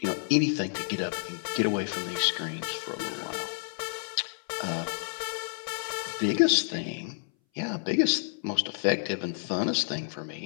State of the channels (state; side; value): silent; right; 58 dB below the other